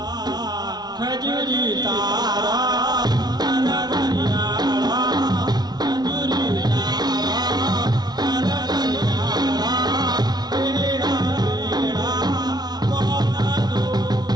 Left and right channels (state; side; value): late; left; 0.19 ms